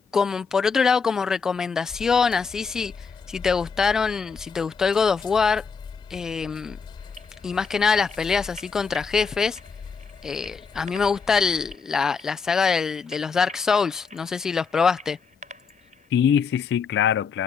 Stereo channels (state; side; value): quieter; right; 5.5 dB